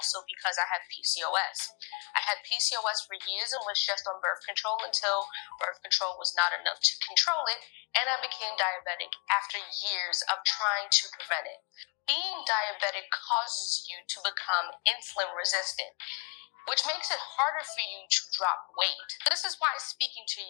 because I have PCOS. I had PCOS for years and was just on birth control until birth control was not enough to control it, and I became diabetic after years of trying to prevent it. Being diabetic causes you to become insulin resistant, which makes it harder for you to drop weight. This is why speaking to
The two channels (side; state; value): right; quieter; 34.8 dB